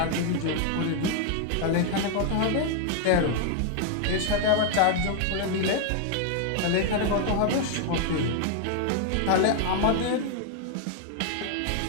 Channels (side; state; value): both; different; correlation 0.00